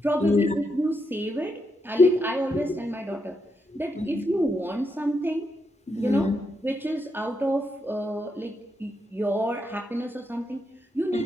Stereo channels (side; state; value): both; normal; correlation 0.81